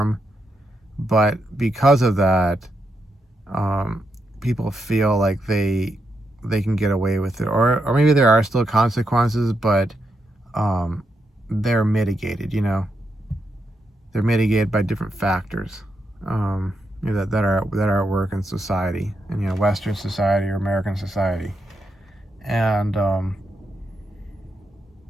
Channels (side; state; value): both; normal; correlation 0.83